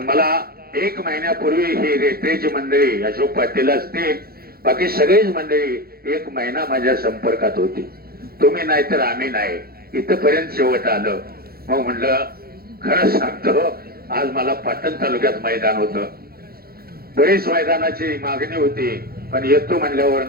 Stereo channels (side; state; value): left; late; 0.44 ms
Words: मला 1 महिन्यापूर्वी ही रेटरेची मंडळी, अशोक पाटील असतील, बाकी सगळीच मंडळी 1 महिना माझ्या संपर्कात होती. तुम्ही नाही तर आम्ही नाही, इथपर्यंत शेवट आलं. मग म्हणलं खरंच सांगतो, आज मला पाटण तालुक्यात मैदान होतं. बरीच मैदानाची मागणी होती, पण येतो म्हणल्यावर